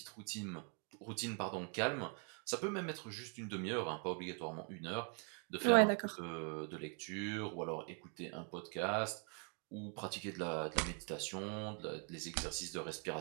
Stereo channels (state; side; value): quieter; left; 39.7 dB